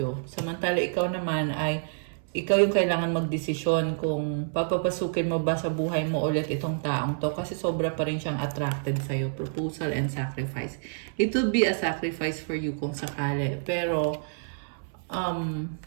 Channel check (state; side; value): silent; left; 59 dB below the other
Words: Samantala, ikaw naman ay, ikaw yung kailangan magdesisyon kung papapasukin mo ba sa buhay mo ulit itong taong to kasi sobra pa rin siyang attracted sa'yo. Proposal and sacrifice. It will be a sacrifice for you kung sakali. Pero,